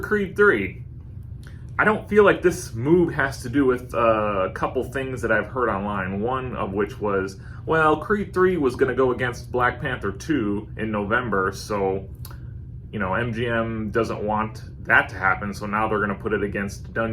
3. I don't feel like this move has to do with a couple things that I've heard online, one of which was, well, Creed 3 was going to go against Black Panther 2 in November, so MGM doesn't want that to happen, so now they're going to put it against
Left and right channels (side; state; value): both; identical; correlation 1.00